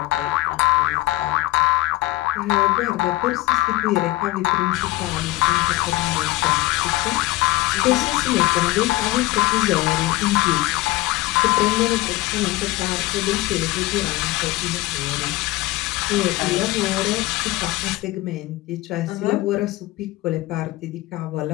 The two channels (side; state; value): right; quieter; 19.0 dB